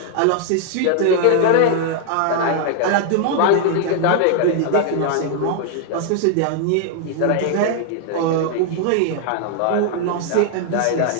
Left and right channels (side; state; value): both; different; correlation 0.00